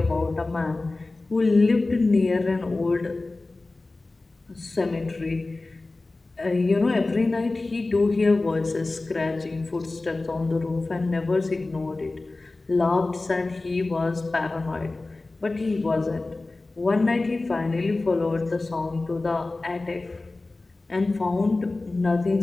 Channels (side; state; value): right; quieter; 3.2 dB